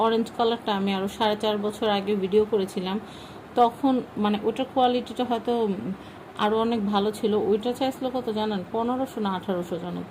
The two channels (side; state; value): both; identical; correlation 1.00